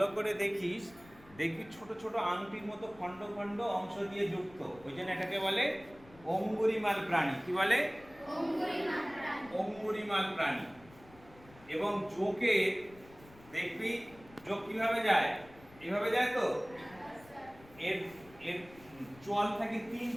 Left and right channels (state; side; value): noise; left; rumble, 23 dB below the sound